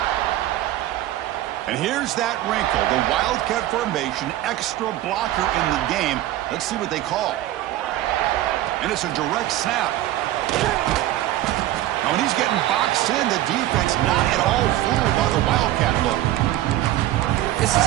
And here's that wrinkle, the Wildcat formation, extra blocker in the game. Let's see what they call. And it's a direct snap. Now when he's getting boxed in, the defense not at all fooled by the Wildcat look. This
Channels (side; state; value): left; quieter; 14.3 dB